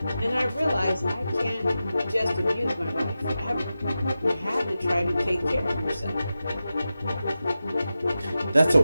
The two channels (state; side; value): inverted; both; correlation -0.92